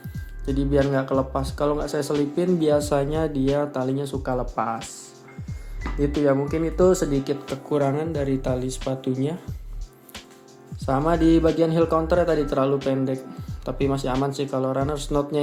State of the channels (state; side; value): identical; both; correlation 1.00